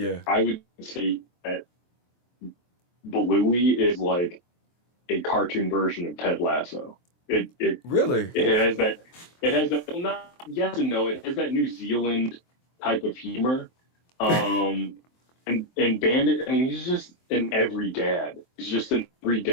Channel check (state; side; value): late; right; 23 ms